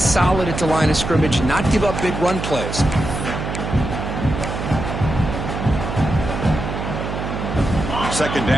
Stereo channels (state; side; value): noise; right; hum, 5 dB below the sound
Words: at the line of scrimmage, not give up big run plays. Second